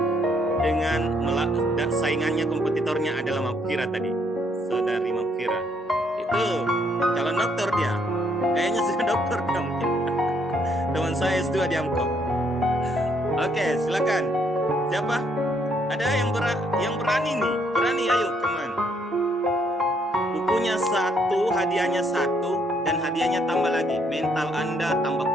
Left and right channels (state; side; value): normal; both; correlation 0.70